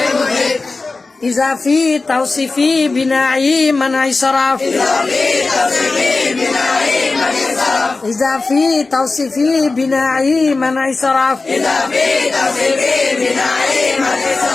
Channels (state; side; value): quieter; right; 3.7 dB